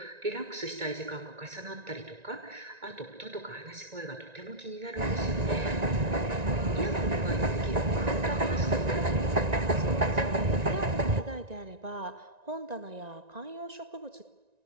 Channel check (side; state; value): left; late; 1.9 ms